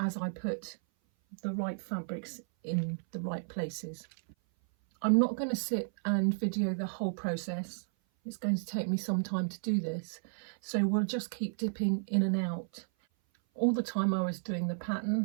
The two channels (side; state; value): left; silent; 56 dB below the other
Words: I put the right fabrics in the right places. I'm not going to sit and video the whole process. It's going to take me some time to do this, so we'll just keep dipping in and out. All the time I was doing the